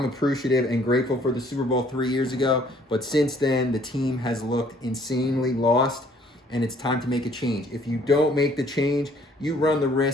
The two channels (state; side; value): normal; both; correlation 0.60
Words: appreciative and grateful for the Super Bowl 3 years ago, but since then, the team has looked insanely lost, and it's time to make a change. If you don't make the change, you run the